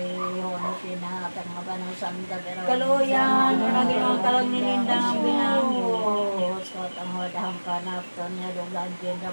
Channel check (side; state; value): both; inverted; correlation -1.00